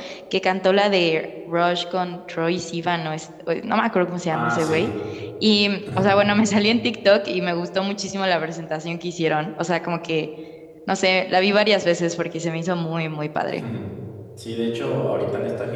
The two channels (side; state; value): both; identical; correlation 1.00